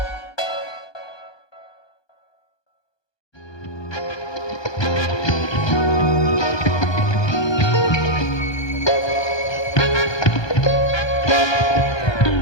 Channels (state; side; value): late; right; 1.2 ms